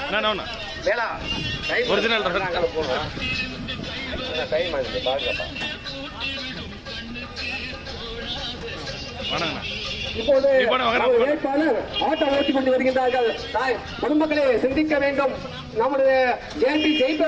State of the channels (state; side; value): identical; both; correlation 1.00